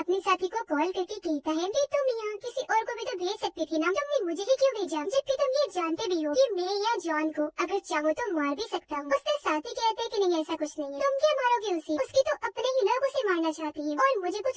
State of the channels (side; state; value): both; identical; correlation 1.00